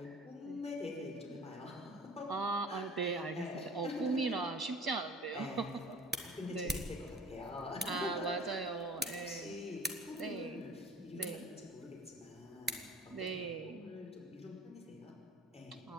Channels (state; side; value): normal; both; correlation 0.45